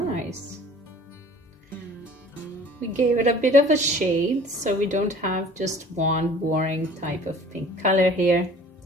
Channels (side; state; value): both; normal; correlation 0.48